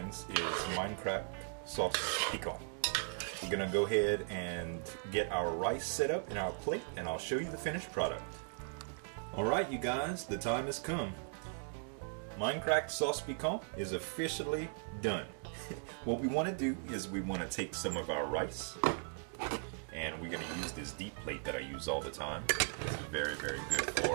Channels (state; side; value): silent; left; 52 dB below the other